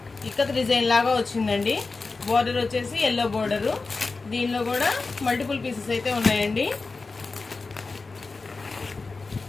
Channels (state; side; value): quieter; right; 4.0 dB